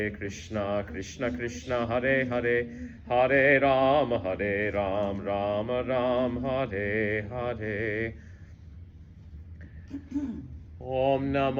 Krishna Krishna, Hare Hare, Hare Ram, Ram Ram, Hare Hare. Om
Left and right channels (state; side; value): identical; both; correlation 1.00